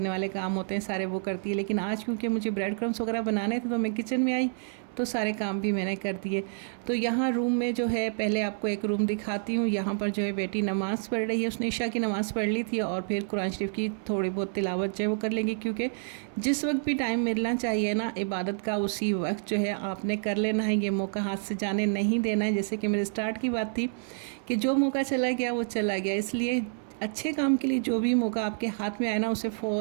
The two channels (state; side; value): silent; left; 59 dB below the other